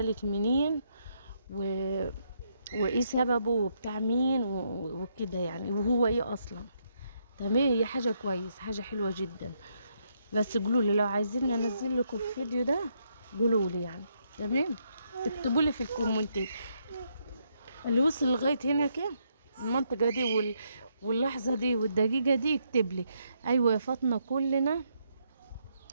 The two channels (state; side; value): inverted; both; correlation -0.76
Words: منين و... وايه سببه وبتاع مين وكده يعني، وهو ايه اصلا. تمام، هي حاجه كويس، حاجه حلوه جدا، بس قولوا لي لو عايزين انزل لكم الفيديو ده قولوا لي يعني. تمام، اكتبوا لي في الكومنتات اللي وصل لغايه هنا كده المنطقه دي واللحظه دي والدقيقه دي، يكتب لي ايوه يا فاطمه كلنا